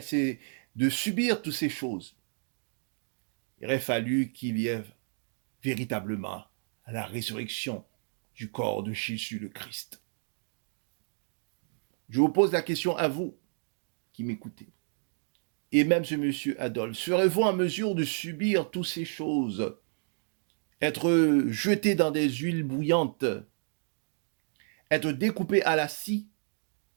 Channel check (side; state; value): left; silent; digital silence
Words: c'est de subir toutes ces choses. Il aurait fallu qu'il y ait véritablement la résurrection du corps de Jésus le Christ. Je vous pose la question à vous qui m'écoutez. Et même ce monsieur Adolphe, serez-vous en mesure de subir toutes ces choses? Être jeté dans des huiles bouillantes, être découpé à la scie,